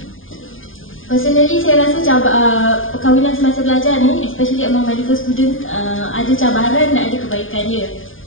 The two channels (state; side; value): late; right; 0.59 ms